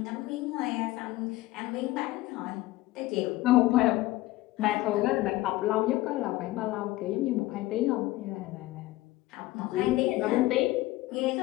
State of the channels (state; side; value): quieter; right; 17.9 dB